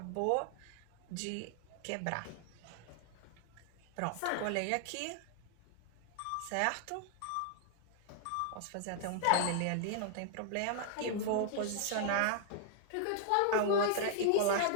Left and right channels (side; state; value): both; different; correlation -0.01